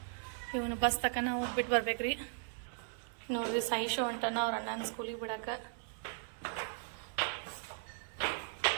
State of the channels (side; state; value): left; silent; 53 dB below the other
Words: ಇವನು ಬಸ್ ತಕನ ಹೋಗಿ ಬಿಟ್ಟು ಬರ್ಬೇಕ್ರಿ. ನೋಡ್ರಿ, ಸಾಯಿಶು ಹೊಂಟಾನ ಅವ್ರ ಅಣ್ಣನ ಸ್ಕೂಲಿಗೆ ಬಿಡಕ್ಕೆ.